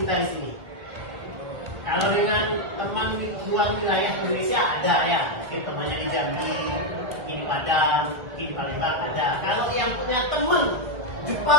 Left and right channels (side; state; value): left; late; 1.5 ms